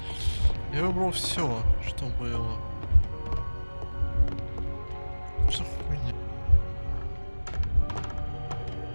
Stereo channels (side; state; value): both; inverted; correlation -1.00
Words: Я выбрал все, что было. Что хуйня?